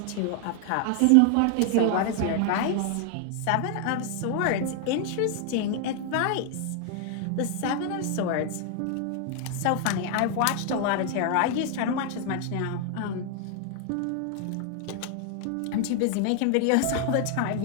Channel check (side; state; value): both; different; correlation 0.00